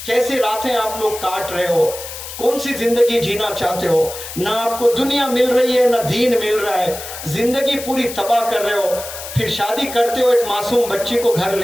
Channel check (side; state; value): left; noise; hiss, 10 dB below the sound